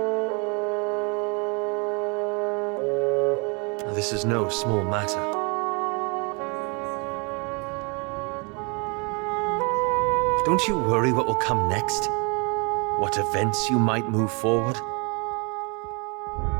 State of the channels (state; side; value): quieter; left; 32.7 dB